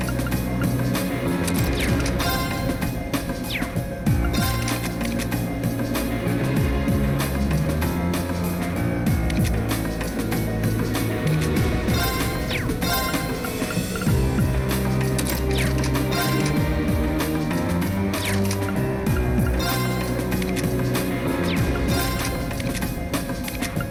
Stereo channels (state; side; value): identical; both; correlation 1.00